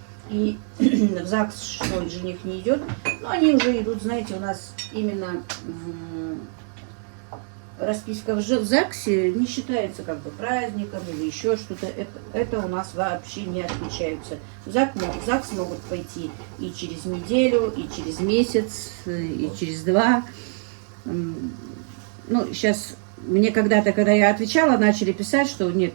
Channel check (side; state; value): left; silent; 62 dB below the other